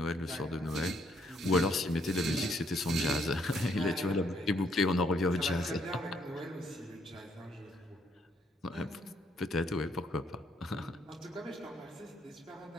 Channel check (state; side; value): normal; both; correlation 0.71